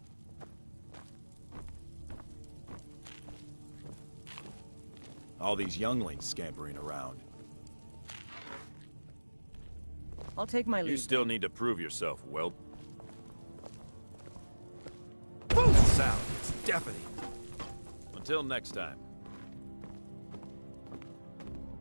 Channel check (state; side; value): inverted; both; correlation -1.00